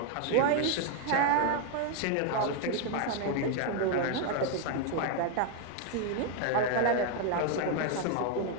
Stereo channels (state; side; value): different; both; correlation 0.01